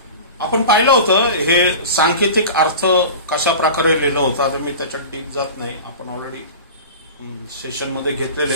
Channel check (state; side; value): inverted; both; correlation -0.34